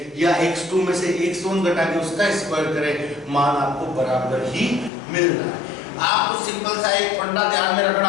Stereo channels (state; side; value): drops out; right; at 4.9 s